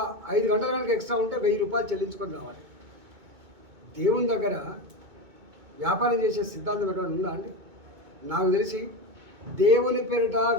5 గంటలు కనుక ఎక్స్ట్రా ఉంటే 1000 రూపాయలు చెల్లించుకొని రావాలి. దేవుని దగ్గర వ్యాపారం చేసే సిద్ధాంతం ఎక్కడ ఉందా అండి? నాకు తెలిసి దేవుని పేరిట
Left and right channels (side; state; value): left; late; 2.2 ms